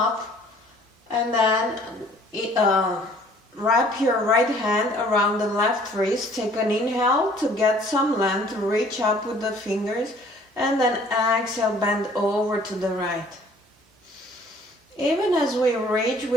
and then wrap your right hand around the left wrist. Take an inhale to get some length, reach up with the fingers, and then exhale, bend over to the right. Even as we reach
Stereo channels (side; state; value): both; normal; correlation 0.56